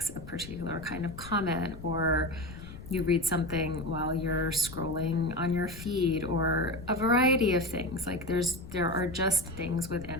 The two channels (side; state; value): left; noise; rumble, 14 dB below the sound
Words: a particular kind of comment, or you read something while you're scrolling on your feed, or a variety of things. Like there are just things